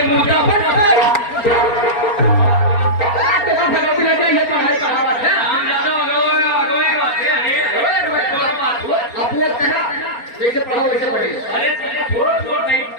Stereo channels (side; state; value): right; late; 4.4 ms